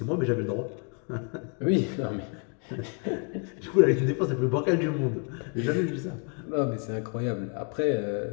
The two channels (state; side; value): quieter; right; 39.1 dB